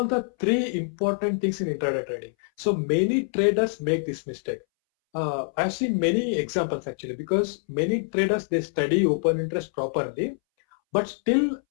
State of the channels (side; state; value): right; silent; 61 dB below the other